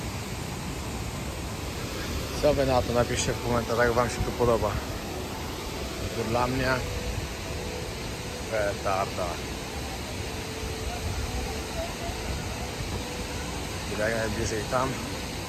Co wy na to? Napiszcie w komentarzach, jak wam się tu podoba. To dla mnie petarda. Jak najbliżej tam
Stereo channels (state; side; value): identical; both; correlation 1.00